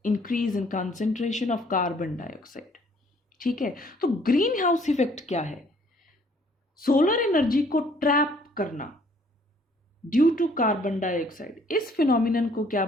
increase in concentration of carbon dioxide. ठीक है, तो ग्रीन हाउस इफेक्ट क्या है, सोलर एनर्जी को ट्रैप करना ड्यू टू कार्बन डाइऑक्साइड। इस फिनोमिनन को क्या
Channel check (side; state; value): both; normal; correlation 0.61